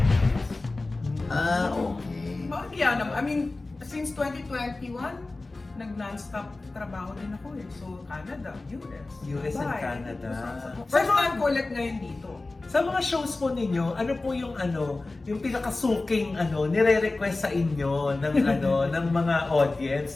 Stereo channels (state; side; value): quieter; right; 3.2 dB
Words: Okay. Bakit yan naman? I mean, since 2021, nag-non-stop trabaho din ako eh. So, Canada, US. US and Dubai. Canada. First time ko ulit ngayon dito. Sa mga shows po ninyo, ano po yung yung pinakasuking nire-request sa inyo ng ng mga audience